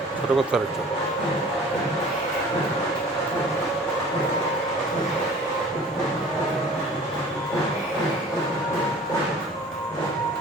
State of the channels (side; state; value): both; normal; correlation 0.46